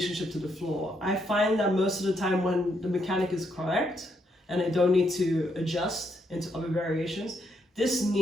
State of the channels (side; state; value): both; normal; correlation 0.77